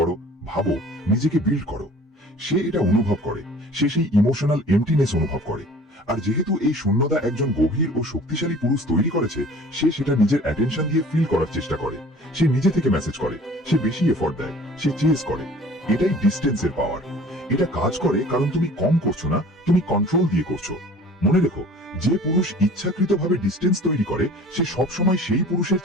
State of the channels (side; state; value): both; normal; correlation 0.47